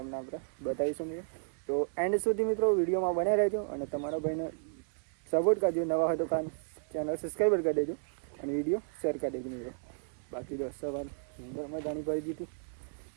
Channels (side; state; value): left; silent; 56 dB below the other